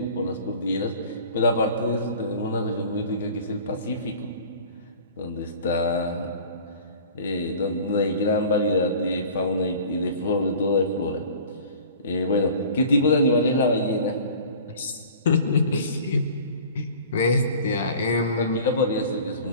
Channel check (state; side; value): inverted; both; correlation -0.44